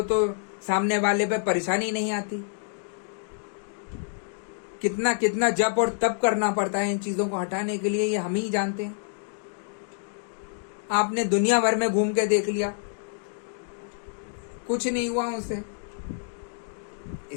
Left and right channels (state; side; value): silent; right; digital silence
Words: तो सामने वाले पे परेशानी नहीं आती। कितना कितना जप और तप करना पड़ता है इन चीजों को हटाने के लिए, ये हम ही जानते हैं। आपने दुनिया भर में घूम के देख लिया, कुछ नहीं हुआ उनसे,